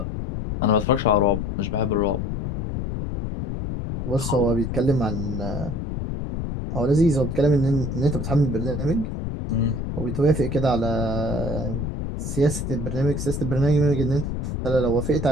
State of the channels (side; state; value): left; noise; rumble, 4 dB below the sound